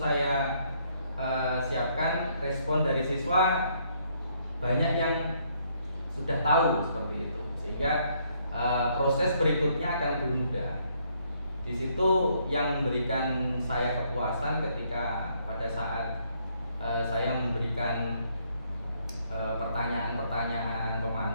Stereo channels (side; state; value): both; inverted; correlation -0.70